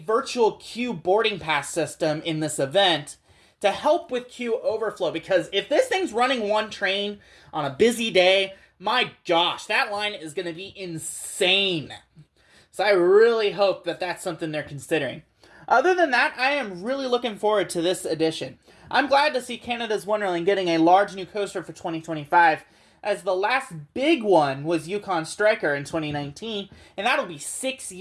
virtual queue boarding pass system in this event to help with queue overflow, because if this thing's running 1 train on a busy day, my gosh, that line is going to be insane. So I really hope that that's something they're considering. Other than that, I am really looking forward to this edition. I'm glad to see Canada's Wonderland getting a large new coaster for 2025, as the last big one was Yukon Striker in 2019, and that'll be 6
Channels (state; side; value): identical; both; correlation 1.00